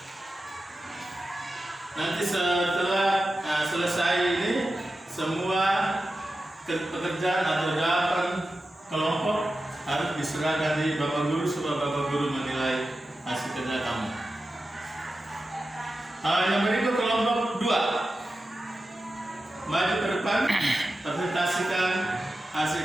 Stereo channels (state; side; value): normal; both; correlation 0.92